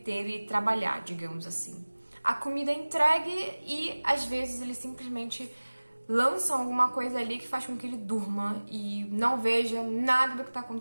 e trabalhar, digamos assim. A comida é entregue e às vezes eles simplesmente lançam alguma coisa ali que faz com que ele durma e não veja nada do que está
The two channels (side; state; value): both; inverted; correlation -1.00